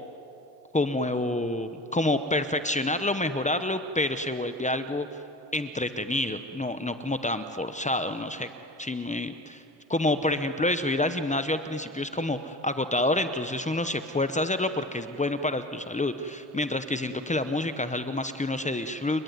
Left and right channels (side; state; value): both; normal; correlation 0.37